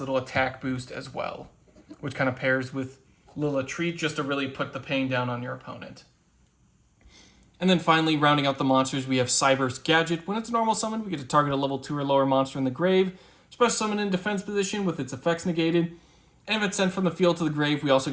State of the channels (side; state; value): both; identical; correlation 1.00